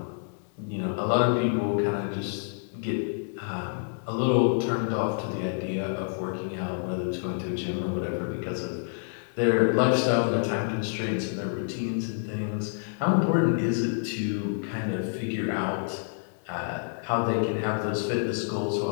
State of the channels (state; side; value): silent; right; 59 dB below the other